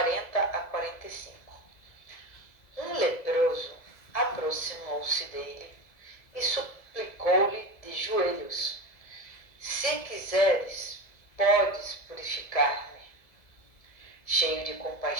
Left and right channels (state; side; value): late; right; 2.0 ms